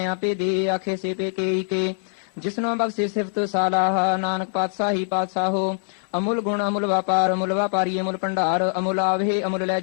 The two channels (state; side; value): silent; right; 63 dB below the other